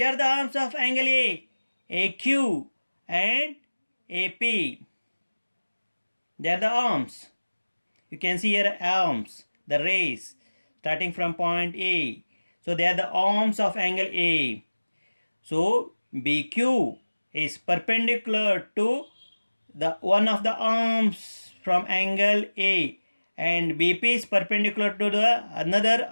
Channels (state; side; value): inverted; both; correlation -1.00